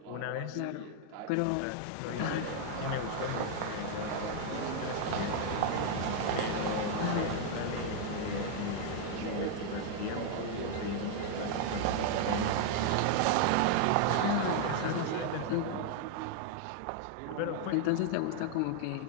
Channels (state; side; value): different; both; correlation 0.00